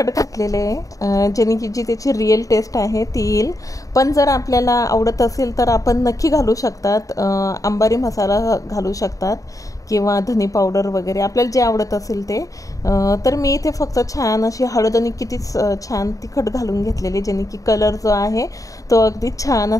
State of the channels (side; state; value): right; late; 0.16 ms